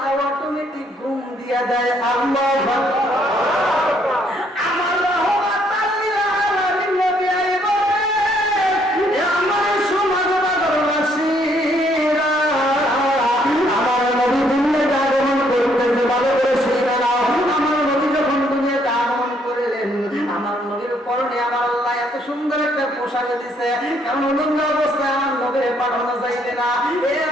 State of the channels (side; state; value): both; normal; correlation 0.68